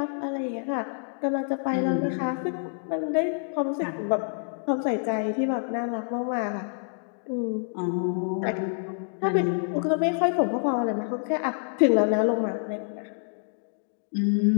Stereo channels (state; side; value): silent; right; digital silence